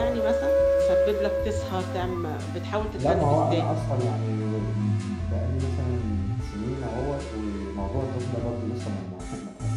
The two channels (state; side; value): identical; both; correlation 1.00